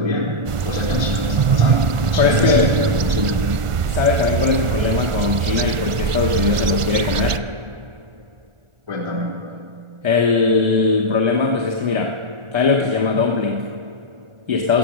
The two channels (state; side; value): late; left; 1.4 ms